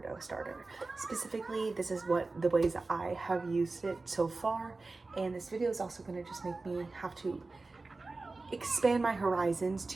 starter. Specifically, this is the ways that I have used it so far, and this video is also going to just make me have to expand my horizons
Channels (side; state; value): left; quieter; 3.5 dB